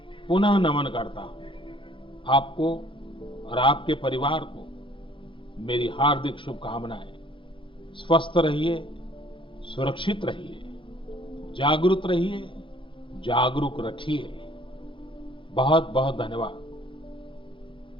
पुनः नमन करता हूं। आपको और आपके परिवार को मेरी हार्दिक शुभकामनाएं। स्वस्थ रहिए, सुरक्षित रहिए, जागरूक रहिए, जागरूक रखिए। बहुत बहुत धन्यवाद।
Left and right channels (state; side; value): late; right; 0.25 ms